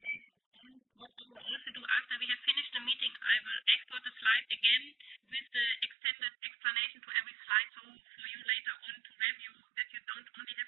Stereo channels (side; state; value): left; drops out; at 6.0 s